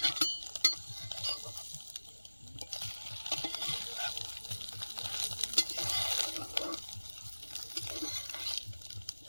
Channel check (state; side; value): inverted; both; correlation -1.00